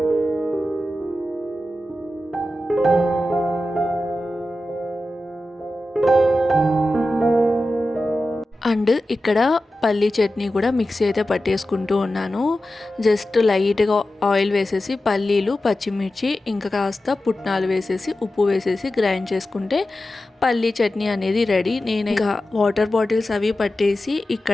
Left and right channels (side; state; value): both; normal; correlation 0.93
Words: అండ్ ఇక్కడ పల్లీ చట్నీ కూడా మిక్సీ అయితే పట్టేసుకుంటూ ఉన్నాను. జస్ట్ లైట్గా ఆయిల్ వేసేసి పల్లీలు, పచ్చిమిర్చి ఇంకా కాస్త పుట్నాలు వేసేసి ఉప్పు వేసేసి గ్రైండ్ చేసుకుంటే పల్లీ చట్నీ అనేది రెడీ. నేను ఇంకా వాటర్ బాటిల్స్ అవి పట్టేసి